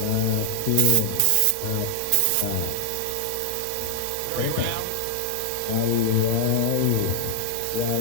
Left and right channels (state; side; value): different; both; correlation 0.00